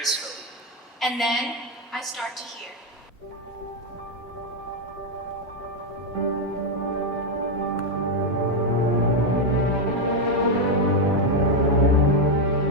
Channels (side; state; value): both; normal; correlation 0.03